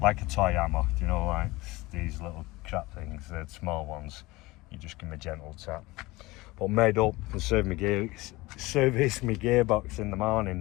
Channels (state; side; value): quieter; right; 21.0 dB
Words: like a toy hammer, you know, like these little crap things, the small ones. You just give me a gentle tap. But made up and service my gearbox in the morning